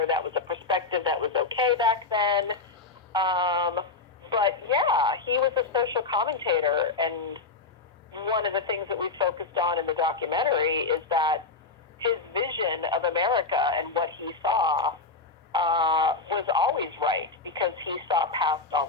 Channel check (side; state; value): right; quieter; 4.1 dB